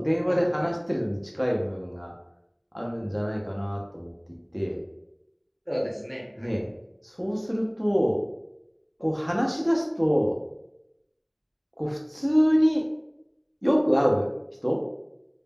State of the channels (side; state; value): both; identical; correlation 1.00